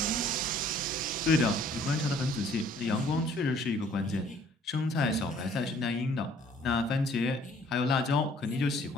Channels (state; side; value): normal; both; correlation 0.58